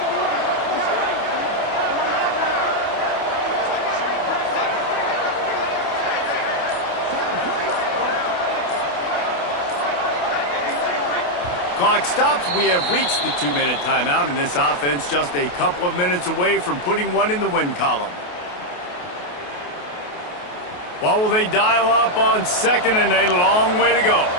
clock stops. We have reached the 2-minute timeout, and this offense just a couple of minutes away from putting one in the win column. What will they dial up on second, and a long way to go?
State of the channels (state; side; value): late; right; 28 ms